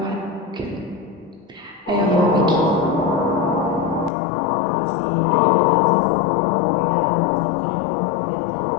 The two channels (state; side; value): drops out; right; at 4.1 s